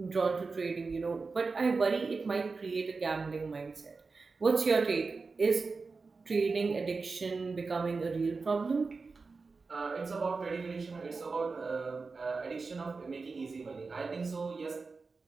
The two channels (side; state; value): left; quieter; 4.3 dB